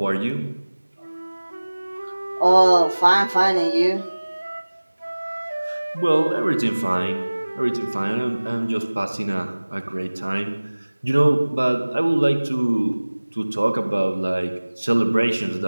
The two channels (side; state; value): both; inverted; correlation -1.00